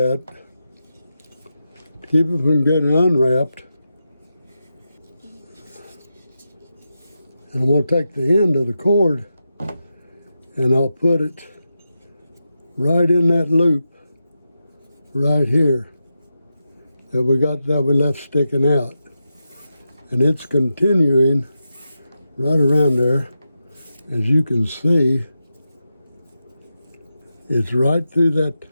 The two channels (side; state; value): both; inverted; correlation -0.89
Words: keep it from getting unwrapped. And I'm going to take the end of the cord and I'll put it right in that loop right here that we left sticking out. And it's continuing right around there. As you can see, it's right through that,